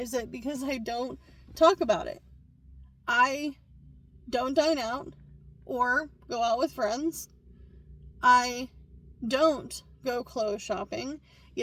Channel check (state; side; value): identical; both; correlation 1.00